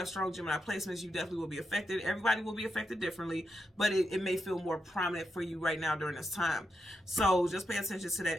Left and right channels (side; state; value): both; normal; correlation 0.85